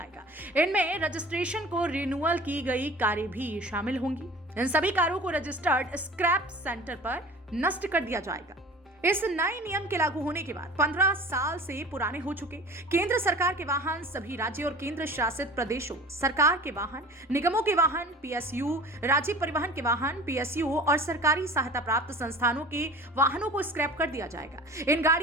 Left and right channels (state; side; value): normal; both; correlation 0.41